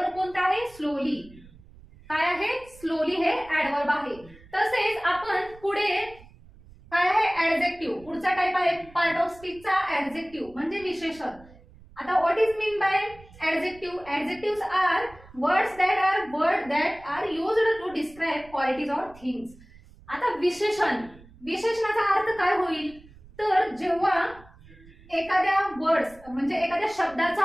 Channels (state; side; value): noise; right; rumble, 23 dB below the sound